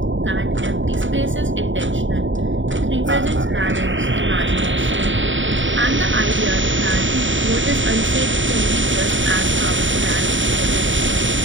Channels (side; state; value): left; late; 0.55 ms